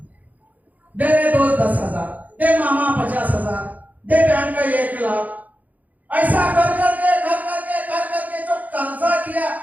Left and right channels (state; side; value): late; left; 0.078 ms